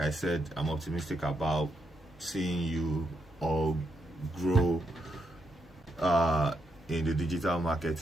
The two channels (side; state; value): both; normal; correlation 0.80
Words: I said, I'm optimistic about seeing you all grow in the digital